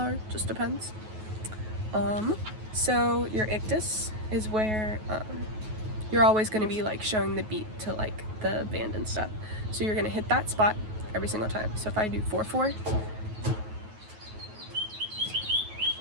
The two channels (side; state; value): left; late; 9.3 ms